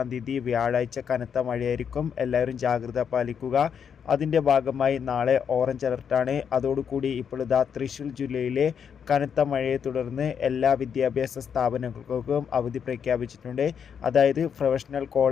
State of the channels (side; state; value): right; quieter; 7.5 dB